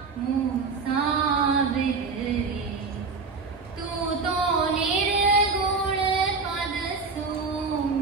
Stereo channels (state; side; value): quieter; left; 4.5 dB